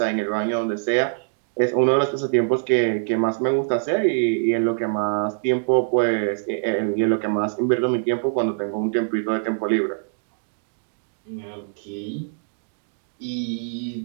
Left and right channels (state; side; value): silent; left; digital silence